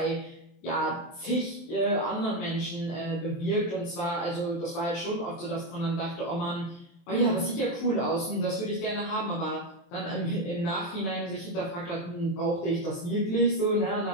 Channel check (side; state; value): right; late; 23 ms